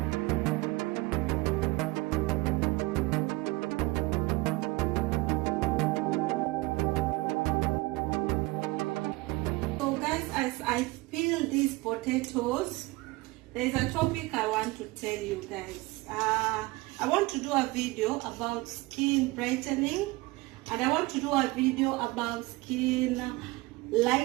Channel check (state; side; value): quieter; left; 21.9 dB